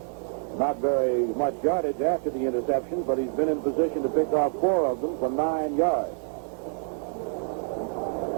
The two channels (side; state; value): left; silent; 60 dB below the other